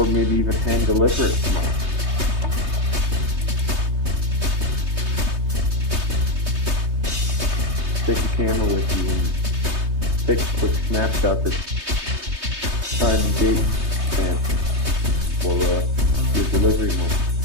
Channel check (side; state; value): left; late; 3.2 ms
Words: maybe even hand deliver it tomorrow. Take a camera with you and take a quick snapshot that's time and date stamp for your delivery moment.